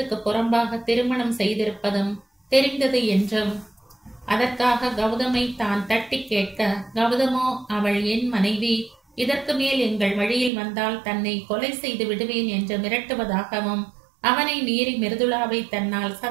புறம்பாக திருமணம் செய்திருப்பதும் தெரிந்தது என்றும், அதற்காக கௌதமை தான் தட்டி கேட்க, கௌதமோ அவள் என் மனைவி, இதற்கு மேல் எங்கள் வழியில் வந்தால் தன்னை கொலை செய்து விடுவேன் என்று மிரட்டுவதாகவும், அவனை மீறி மிருதுளாவை தன்னால்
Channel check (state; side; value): drops out; left; at 10.5 s